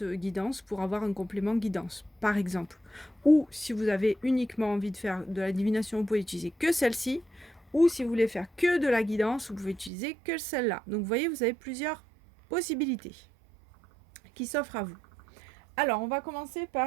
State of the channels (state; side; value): drops out; left; at 9.9 s